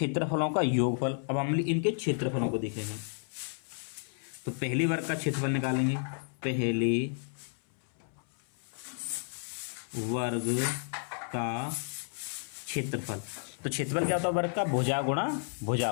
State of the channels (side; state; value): right; silent; 57 dB below the other